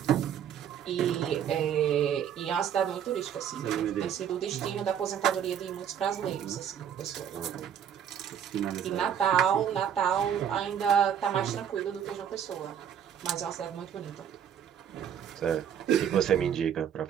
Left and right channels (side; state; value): left; quieter; 8.9 dB